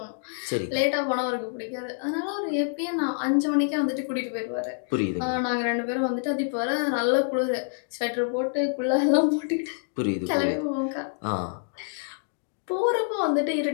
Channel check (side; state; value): right; silent; digital silence